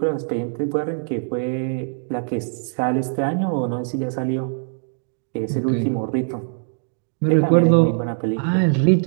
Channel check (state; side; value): silent; left; digital silence